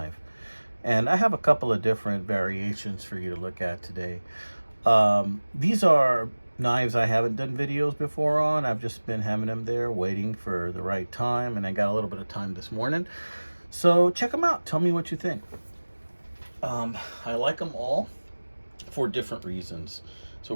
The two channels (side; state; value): both; inverted; correlation -1.00